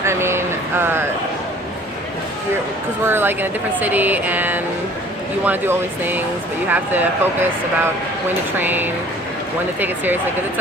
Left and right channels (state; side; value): normal; both; correlation 0.51